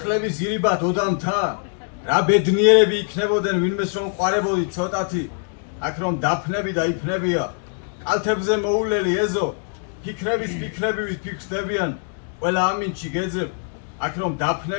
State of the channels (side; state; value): right; silent; 56 dB below the other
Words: ირიბად ოდამთა, რა ბედნიერები იქნებოდნენ ვინმეს რომ ყვარებოდი ცოტათი, აქ რომ დაფნები და იფნებია, კალთებზე მოულელი ეზო, ფიქრების ფიქრებივით ფიქრდებიან, ყველა ამინჩი გეძებ, აქ რომ